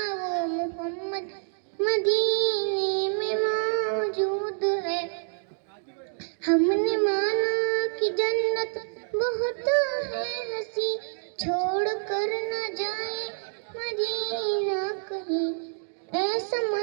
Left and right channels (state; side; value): silent; left; digital silence